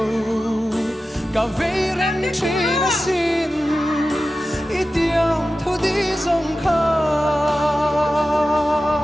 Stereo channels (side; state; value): both; normal; correlation 0.94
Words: Cả vây rèn chi na xin Ý tiang thu đi dòng khá